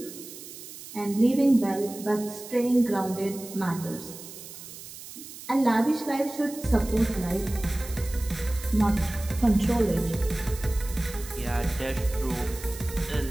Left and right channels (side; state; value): right; noise; hiss, 14 dB below the sound